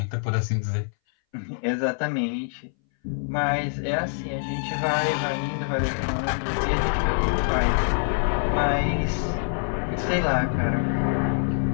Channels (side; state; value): right; silent; 60 dB below the other